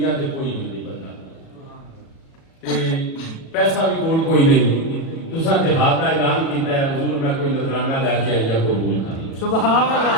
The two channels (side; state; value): right; late; 37 ms